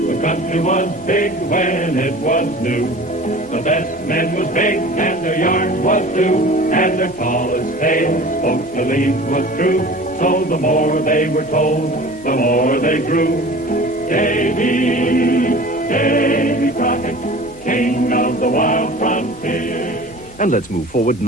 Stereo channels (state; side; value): normal; both; correlation 0.41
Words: country was big when it was new. The best men was big and their yarn was blue, and their tallest tale folks believed was true. So the more they were told, the more they grew. Davy Crockett, king of the wild frontier. And let's move forward